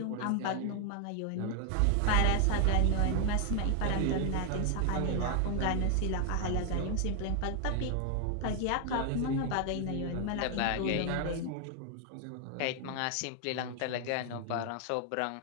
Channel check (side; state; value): both; different; correlation 0.00